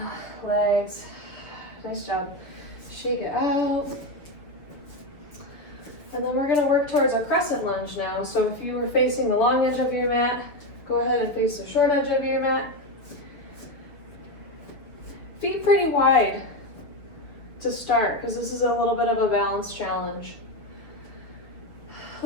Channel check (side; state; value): right; late; 7.1 ms